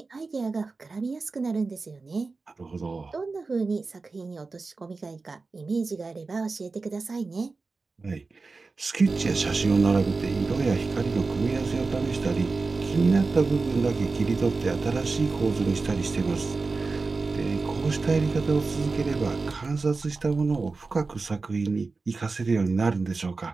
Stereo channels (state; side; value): quieter; left; 4.0 dB